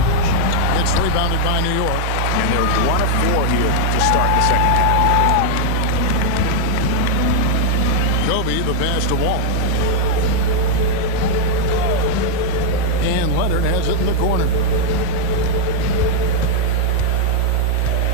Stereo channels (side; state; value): both; different; correlation 0.00